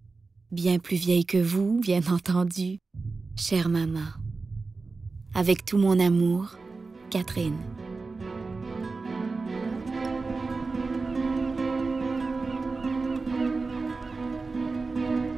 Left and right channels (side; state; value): left; quieter; 4.0 dB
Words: Bien plus vieilles que vous, bien entendu. Chère maman. Avec tout mon amour, Catherine.